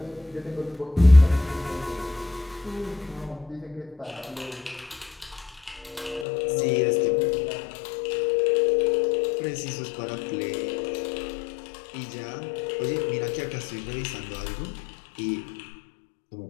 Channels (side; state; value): right; drops out; at 6.2 s